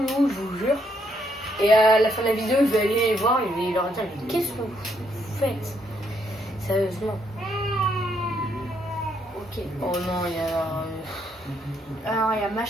je vous jure. Et à la fin de la vidéo, je vais aller les voir et je vais leur dire mais qu'est-ce que vous faites? Sérieusement. Ok. Oh non, il y a. Alors il y a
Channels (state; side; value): normal; both; correlation 0.74